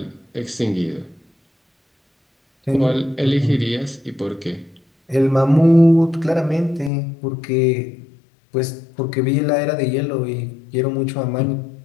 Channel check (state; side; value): drops out; right; at 6.9 s